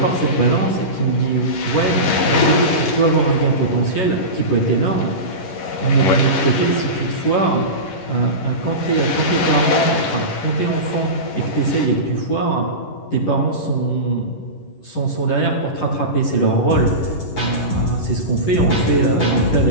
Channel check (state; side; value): late; right; 11 ms